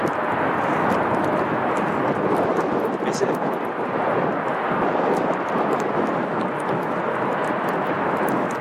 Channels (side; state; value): both; identical; correlation 1.00